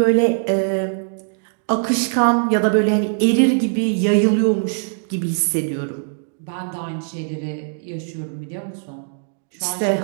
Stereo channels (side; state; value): left; silent; digital silence